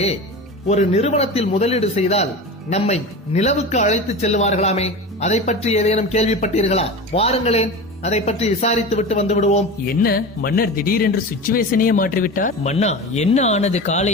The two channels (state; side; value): normal; both; correlation 0.29